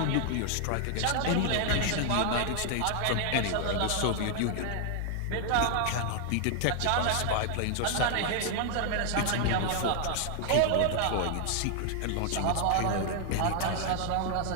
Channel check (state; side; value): different; both; correlation 0.00